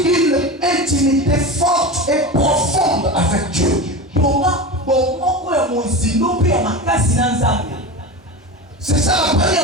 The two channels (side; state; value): both; normal; correlation 0.26